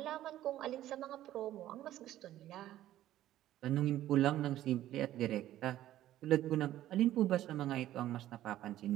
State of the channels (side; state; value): left; quieter; 13.4 dB